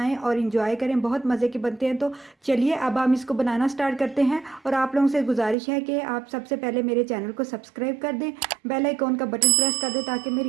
और इंजॉय करें। बहुत मज़े के बनते हैं। तो चलिए अब हम इसको बनाना स्टार्ट करते हैं। और आप लोगों से गुजारिश है कि आप सबसे पहले मेरे चैनल को सब्सक्राइब कर दें, बेल आइकॉन का बटन प्रेस कर दें ताकि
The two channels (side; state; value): left; drops out; at 5.6 s